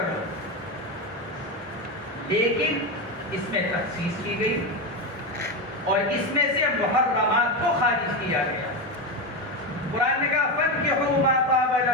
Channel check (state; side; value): normal; both; correlation 0.14